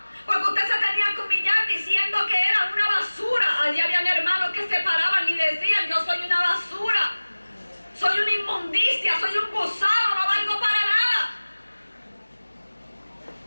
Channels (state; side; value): inverted; both; correlation -1.00